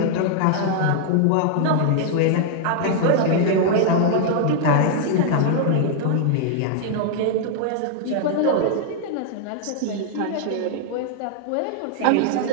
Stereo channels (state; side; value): different; both; correlation -0.01